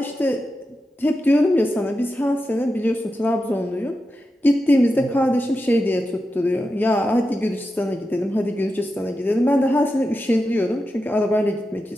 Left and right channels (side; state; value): both; normal; correlation 0.90